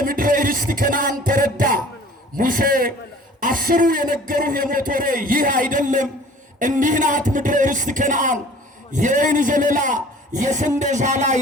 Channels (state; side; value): normal; both; correlation 0.48